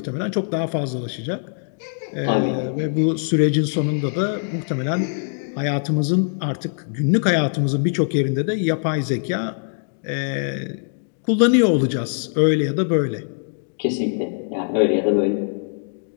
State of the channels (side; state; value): right; silent; digital silence